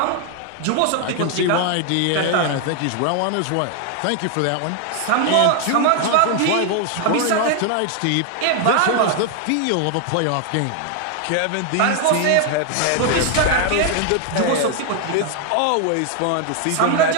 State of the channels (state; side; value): different; both; correlation 0.00